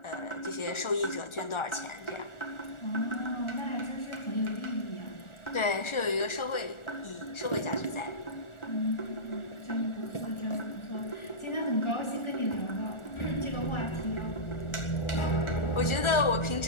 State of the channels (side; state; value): right; late; 1.4 ms